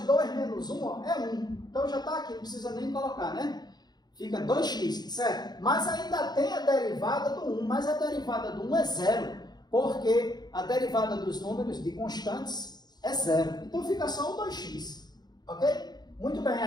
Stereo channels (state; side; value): late; right; 0.20 ms